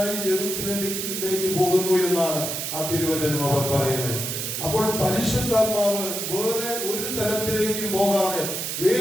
യെരൂശലേമിലേക്ക് പോകുന്നു എന്നാണ് ആ തിരുവചനം അവിടെ പറയുന്നത്. അപ്പോൾ പരിശുദ്ധാത്മാവ് വേറെ ഒരു തലത്തിലേക്കും പോകാതെ,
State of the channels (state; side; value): noise; right; hiss, 3 dB below the sound